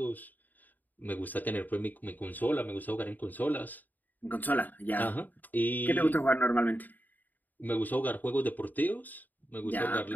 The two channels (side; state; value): right; late; 0.086 ms